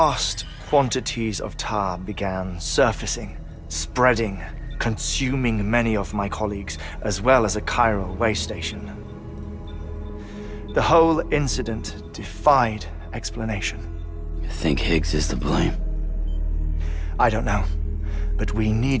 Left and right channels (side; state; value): both; identical; correlation 1.00